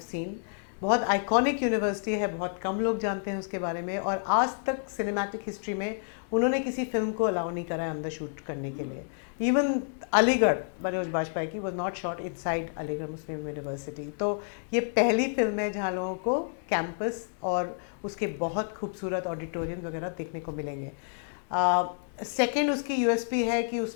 seen. बहुत आइकॉनिक यूनिवर्सिटी है, बहुत कम लोग जानते हैं उसके बारे में, और आज तक सिनेमैटिक हिस्ट्री में उन्होंने किसी फिल्म को अलाउ नहीं करा है अंदर शूट करने के लिए. इवन अलीगढ़ मनोज बाजपेयी की was not shot inside Aligarh Muslim university. तो ये पहली फिल्म है जहाँ लोगों को कैंपस और उसके बहुत खूबसूरत ऑडिटोरियम वगैरह देखने को मिलेंगे. सेकेंड उसकी यूएसपी है कि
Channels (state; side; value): silent; right; digital silence